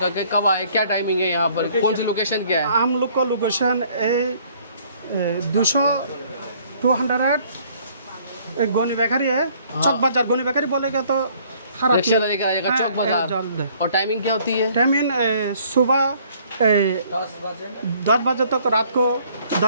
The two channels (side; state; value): both; inverted; correlation -0.60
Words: कि कब आए, क्या टाइमिंग है यहाँ पर, कौन सी लोकेशन क्या है? हम लोग का लोकेशन 200 गोनी बेकरी है, चौक बाजार। गोनी बेकरी बोलेगा तो रिक्शा लेकर आएगा चौक बाजार। जल्द है। और टाइमिंग क्या होती है? टाइमिंग सुबह 10 बजे तक, रात को